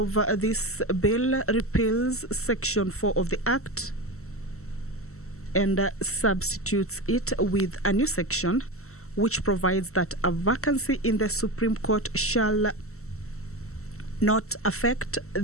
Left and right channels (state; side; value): late; right; 0.63 ms